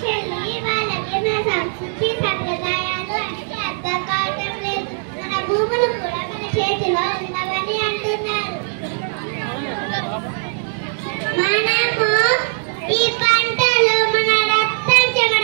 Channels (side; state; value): left; silent; digital silence